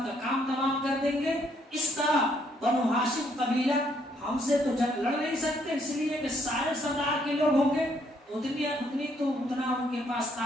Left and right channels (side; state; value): both; normal; correlation 0.70